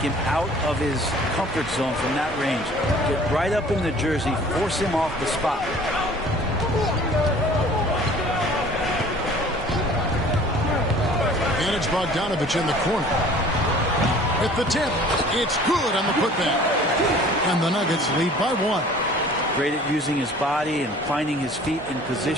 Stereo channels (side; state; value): both; normal; correlation 0.49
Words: out of his comfort zone from that range. Get right up in the jersey, force him off the spot. And it's Bogdanovich in the corner. At the tip, it's good on the putback. And the Nuggets lead by 1. Great at using his body and finding his feet in